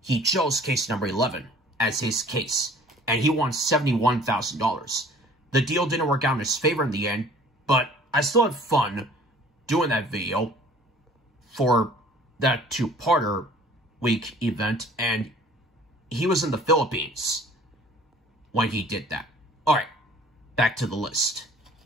he chose case number 11 as his case, and he won $71,000. The deal didn't work out in his favor in the end, but I still had fun doing that video for that 2-parter week event, and he was in the Philippines when he did that. Alright, back to the list.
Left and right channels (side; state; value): both; normal; correlation 0.51